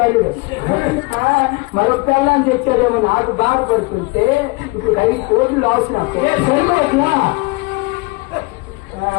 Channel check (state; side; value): quieter; right; 25.6 dB